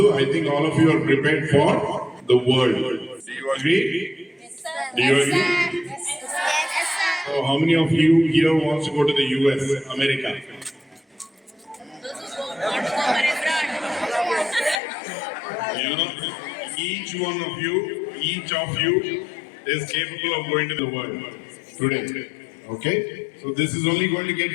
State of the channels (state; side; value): drops out; right; at 14.8 s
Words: I think all of you are prepared for the world. Do you agree? Do you agree? So how many of you here wants to go to the US, America? You know, each of you is capable of going to the world today. Okay, so this is only going to get